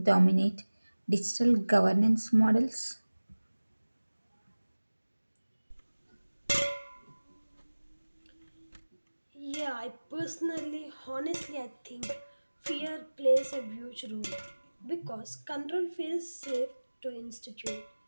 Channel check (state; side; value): inverted; both; correlation -1.00